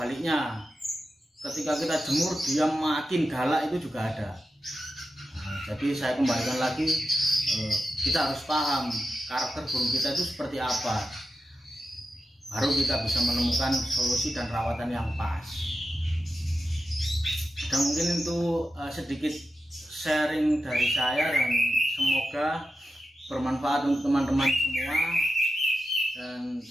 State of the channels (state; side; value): normal; both; correlation 0.90